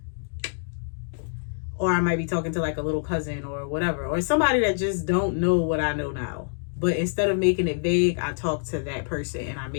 Or I might be talking to like a little cousin or whatever, or somebody that just don't know what I know now. but instead of making it vague, I talk to that person and I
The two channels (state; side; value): silent; right; digital silence